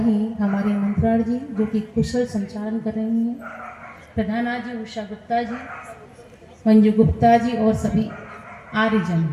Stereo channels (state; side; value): identical; both; correlation 1.00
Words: हमारे मंत्राण जी, जो कि कुशल संचालन कर रही हैं। प्रधाना जी उषा गुप्ता जी, मंजू गुप्ता जी और सभी आर्यजन।